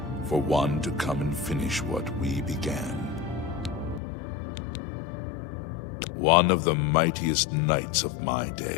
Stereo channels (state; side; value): drops out; right; at 4.0 s